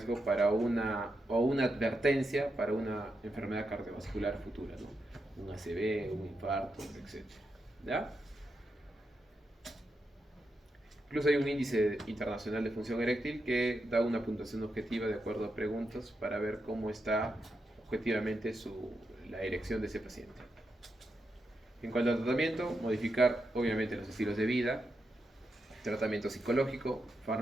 para una advertencia para una enfermedad cardiovascular futura, ¿no? Un ACV, un infarto, etc. ¿Ya? Incluso hay un índice internacional de función eréctil que da una puntuación objetiva de acuerdo a preguntas para ver cómo está objetivamente la erección de ese paciente. En cuanto al tratamiento, modificar obviamente los estilos de vida, tratamiento psicológico,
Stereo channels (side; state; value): both; normal; correlation 0.85